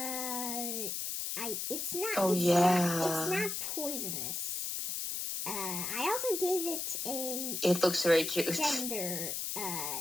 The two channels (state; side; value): noise; left; hiss, 3 dB below the sound